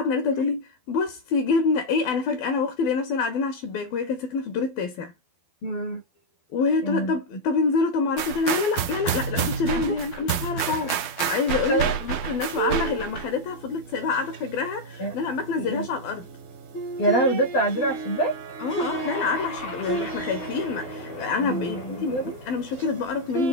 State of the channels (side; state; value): right; late; 12 ms